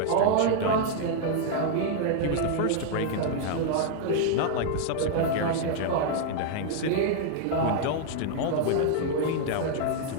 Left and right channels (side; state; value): both; different; correlation 0.00